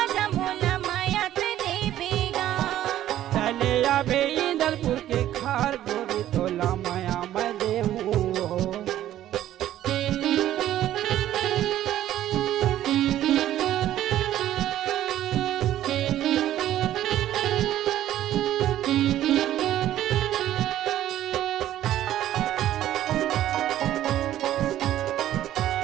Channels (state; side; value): quieter; left; 12.7 dB